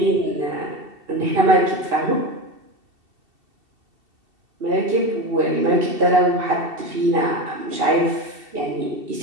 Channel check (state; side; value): late; left; 2.7 ms